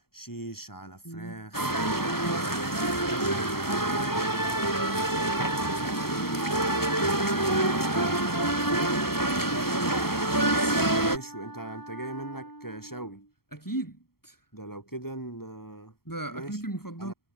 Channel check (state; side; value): late; right; 0.94 ms